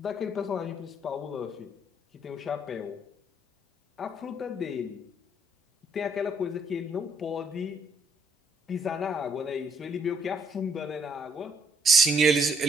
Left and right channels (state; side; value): normal; both; correlation 0.69